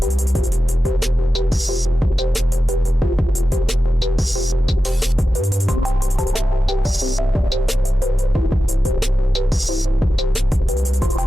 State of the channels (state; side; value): normal; both; correlation 0.92